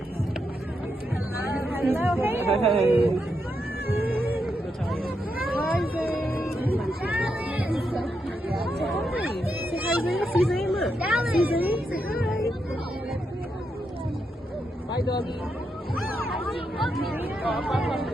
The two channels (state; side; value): normal; both; correlation 0.83